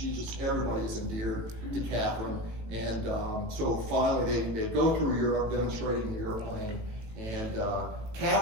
everybody is endeared to Catherine. And so finally, they go through Europe demonstrating the airplane. And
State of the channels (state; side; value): late; left; 18 ms